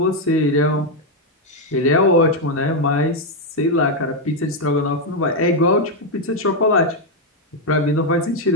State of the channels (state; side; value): normal; both; correlation 0.02